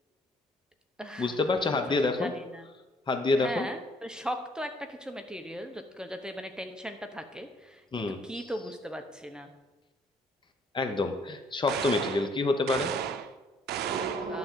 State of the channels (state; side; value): normal; both; correlation 0.63